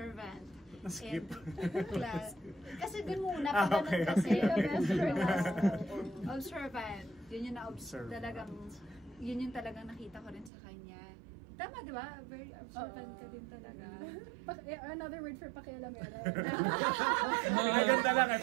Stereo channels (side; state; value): left; drops out; at 10.5 s